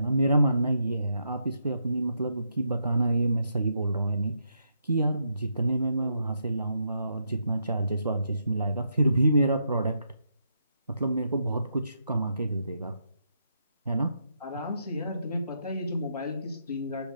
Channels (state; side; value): inverted; both; correlation -0.79